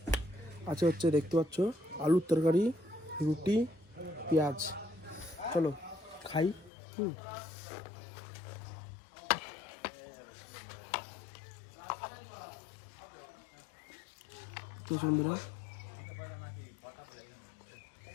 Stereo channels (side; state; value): right; drops out; at 6.7 s